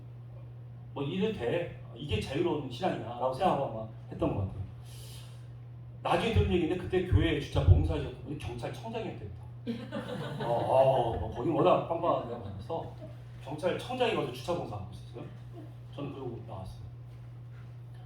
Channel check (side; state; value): both; identical; correlation 1.00